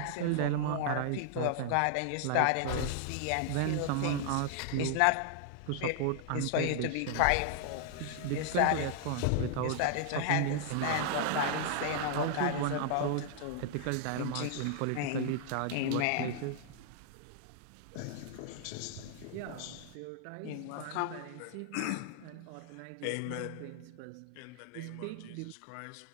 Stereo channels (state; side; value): different; both; correlation 0.00